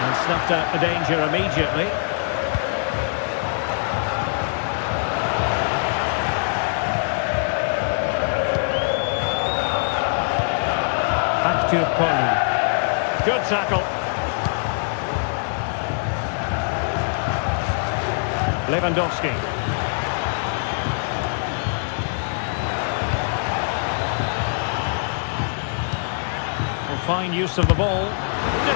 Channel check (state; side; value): silent; right; 62 dB below the other